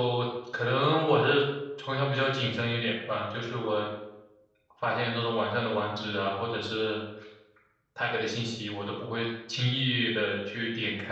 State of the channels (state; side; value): identical; both; correlation 1.00